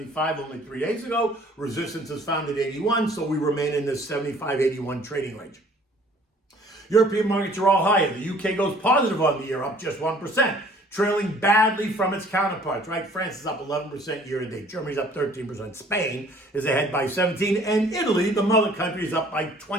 only 3 days ago. Resistance is found at 81, so we remain in this 75-81 trading range. European markets are all higher. The UK goes positive on the year, up just 1%, trailing badly from its counterparts, right? France is up 11% year to date. Germany's up 13%. Spain is ahead by 17%. And Italy, the mother country, is up by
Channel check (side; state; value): both; normal; correlation 0.55